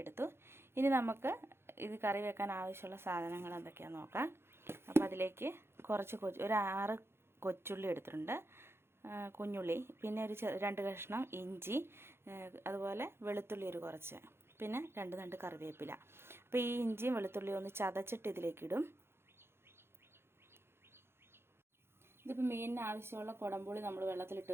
എടുത്തു. ഇനി നമുക്ക് ഇത് കറി വെക്കാൻ ആവശ്യമുള്ള സാധനങ്ങൾ എന്തൊക്കെയാണെന്ന് നോക്കാം. അപ്പോൾ അതിലേക്ക് കുറച്ച് ഒരു 6 കൊച്ചുള്ളി എടുത്തിട്ടുണ്ട്, കുഞ്ഞുള്ളി, പിന്നെ ഒരു 2 കഷ്ണം ഇഞ്ചി, അതുപോലെ വെളുത്തുള്ളി ഒരു കുറച്ച്, പിന്നെ 2 തണ്ട് കറിവേപ്പില. അപ്പോൾ ഈ ഇഞ്ചിയും വെളുത്തുള്ളിയും ഒന്ന് ചതച്ചിട്ട് ഇതിലേക്ക് ഇടും. ഇതിപ്പോൾ മീനിന് ആവശ്യമുള്ള കുടംപുളി നമ്മൾ വെള്ളത്തിലിട്ട്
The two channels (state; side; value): late; left; 0.12 ms